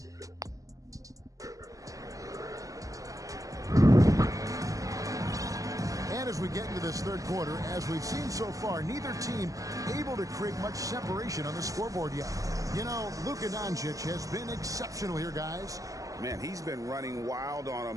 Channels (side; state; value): left; late; 0.16 ms